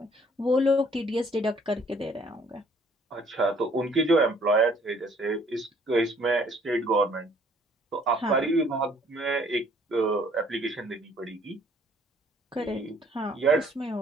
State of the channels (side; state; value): both; normal; correlation 0.60